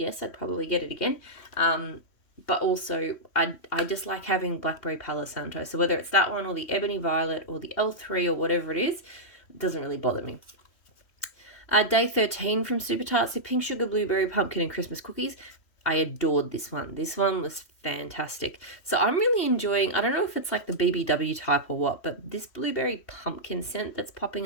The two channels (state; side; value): late; right; 3.1 ms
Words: I'd probably get it again. But also I just like having blackberry Palo Santo. So whether it's that one or the Ebony Violet or the L3 or whatever it is, it doesn't really bother me. Day 13 from Super Tarts, so pink sugar, blueberry, pumpkin, and Christmas cookies. I adored this one. This one was fantastic. So I'm really enjoying, I don't know if it's like the BBW type or what, but this blueberry pumpkin scent that's